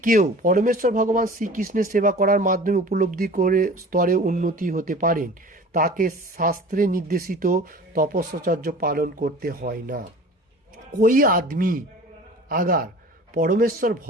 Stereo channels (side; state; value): both; normal; correlation 0.42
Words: কেউ পরমেশ্বর ভগবান শ্রীকৃষ্ণের সেবা করার মাধ্যমে উপলব্ধি করে স্তরে উন্নতি হতে পারেন, তাকে শাস্ত্রে নির্দেশিত তপস্যাচর্য পালন করতে হয় না। कोई आदमी अगर परमेश्वर